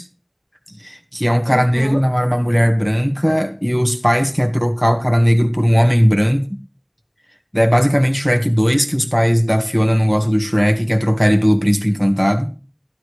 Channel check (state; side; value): identical; both; correlation 1.00